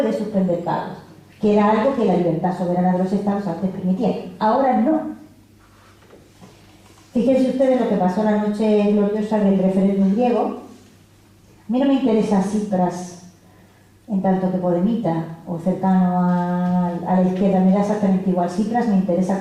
suspender pagos, que era algo que la libertad soberana de los estados antes permitía. Ahora no. Fíjense ustedes lo que pasó la noche gloriosa del referéndum griego. A mí no me interesa Tsipras en tanto que podemita o cercano a la izquierda, me da exactamente igual. Tsipras me interesa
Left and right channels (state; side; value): identical; both; correlation 1.00